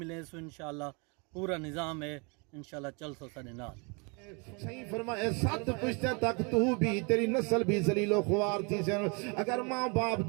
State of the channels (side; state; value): left; quieter; 32.5 dB